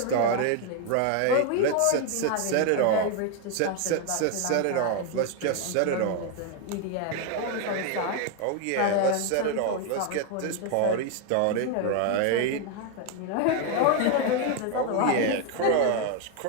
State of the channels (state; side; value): different; both; correlation 0.01